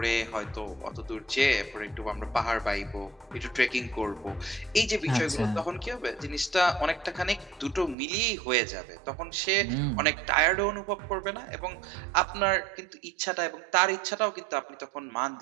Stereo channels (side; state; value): left; drops out; at 8.0 s